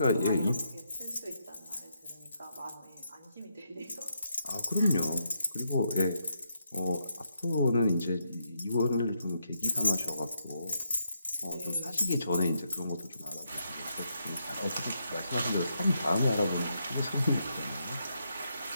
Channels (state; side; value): inverted; both; correlation -0.79